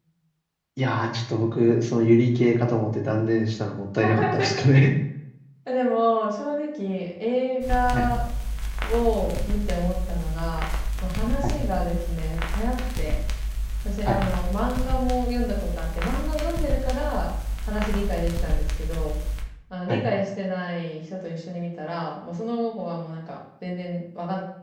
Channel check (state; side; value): identical; both; correlation 1.00